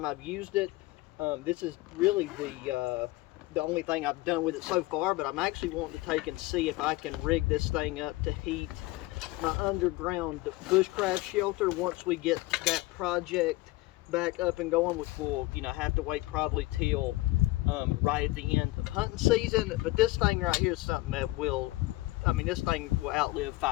I've used it. This is really the only thing I've done with it so far, but I'm actually wanting to take and see if I can rig this thing up to heat my underground bushcraft shelter once we get that project back up and going, which will have to wait probably till right at the end of hunting season. But this thing right here is something that will, this thing will outlive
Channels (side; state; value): right; quieter; 20.0 dB